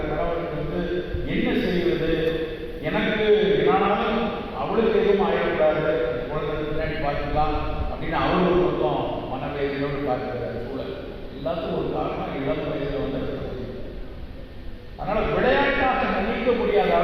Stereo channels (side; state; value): both; identical; correlation 1.00